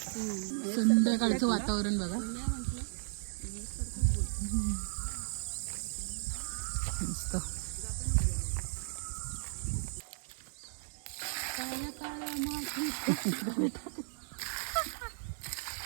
संध्याकाळचं वातावरण बघा. मस्त.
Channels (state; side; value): silent; left; digital silence